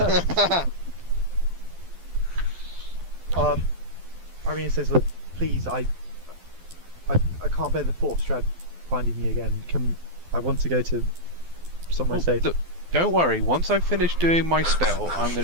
Irene says, "Look, please, I can't bear the thought of Strahd finding me again. I want to go to somewhere safe." Look, don't worry. Once I finish doing my spell, I'm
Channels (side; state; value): left; late; 12 ms